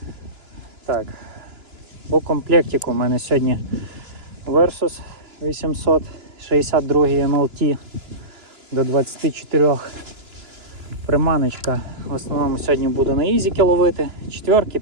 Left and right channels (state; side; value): late; left; 3.0 ms